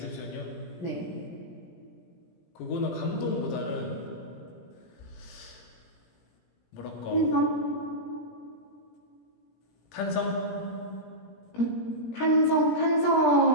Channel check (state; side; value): late; right; 17 ms